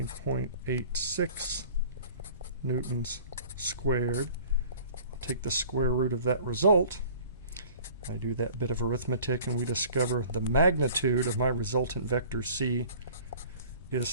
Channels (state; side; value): inverted; both; correlation -0.47